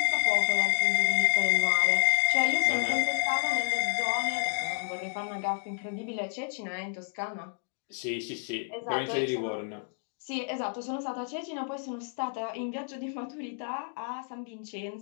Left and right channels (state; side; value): silent; right; 58 dB below the other